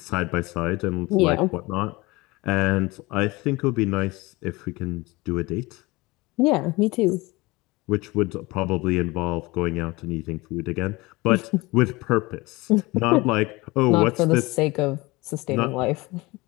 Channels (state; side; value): quieter; right; 22.5 dB